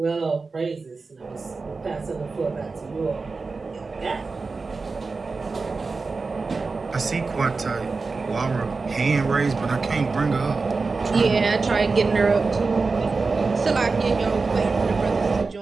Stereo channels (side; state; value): left; quieter; 4.2 dB